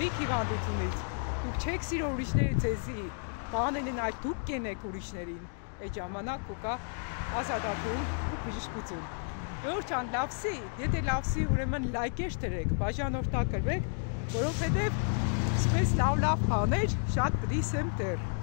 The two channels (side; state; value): right; silent; 57 dB below the other